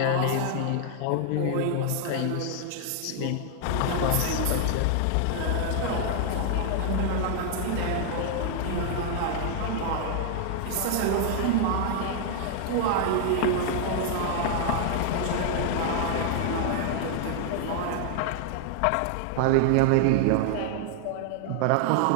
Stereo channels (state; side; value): different; both; correlation 0.00